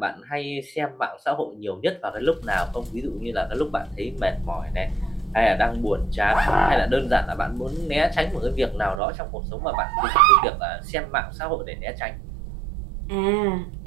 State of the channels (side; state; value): left; drops out; at 9.0 s